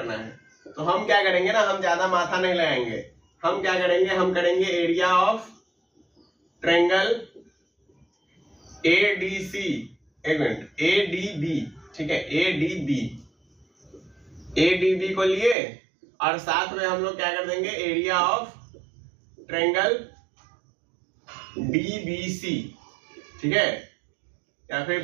है। तो हम क्या करेंगे ना, हम ज्यादा माथा नहीं लगाएंगे, हम क्या करेंगे, हम करेंगे एरिया ऑफ ट्रायंगल एडीसी, एक मिनट, एडीबी, ठीक है, एडीबी, एडीबी को लिए और साथ में हम लोग क्या कर देंगे, एरिया ऑफ ट्रायंगल डीबीसी, ठीक है, या फिर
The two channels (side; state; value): left; drops out; at 15.6 s